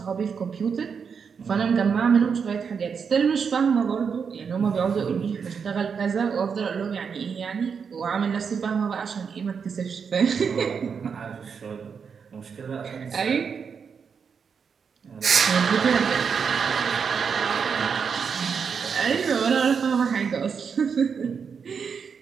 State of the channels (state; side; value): quieter; left; 6.3 dB